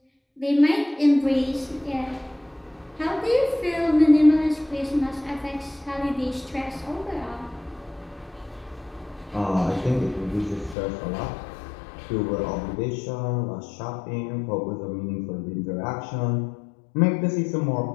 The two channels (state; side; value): drops out; right; at 10.8 s